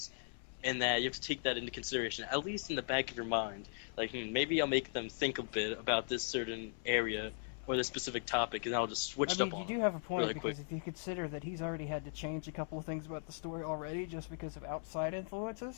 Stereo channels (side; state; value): right; silent; 52 dB below the other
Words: and that you have to take that into consideration, at least in the back of your mind. Like, maybe I'll make them think a bit about this certain area or this specific topic, and I'll just switch I it mean, up on you do them have a point really because quick. if you consider that he's already had to change a couple of things about the story already just because of outside